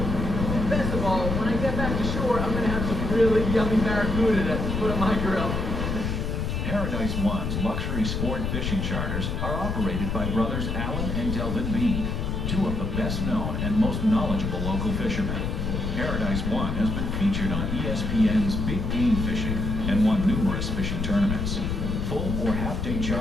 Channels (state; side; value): noise; left; rumble, 2 dB below the sound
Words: And best of all, when I get back to shore, I'm going to have some really yummy barracuda to put on my grill. Paradise One's luxury sport fishing charters are operated by brothers Alan and Delvin Bean, two of the best known and most knowledgeable local fishermen. Paradise One has been featured on ESPN's Big Game Fishing and won numerous fishing tournaments. Full or half-day